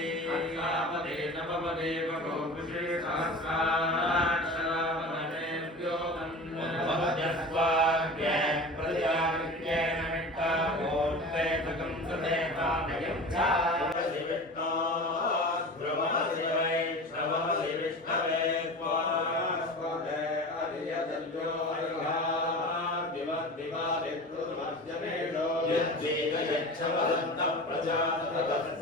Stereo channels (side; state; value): both; normal; correlation 0.34